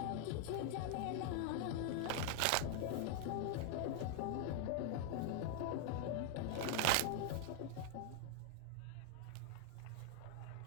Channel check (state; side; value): different; both; correlation 0.00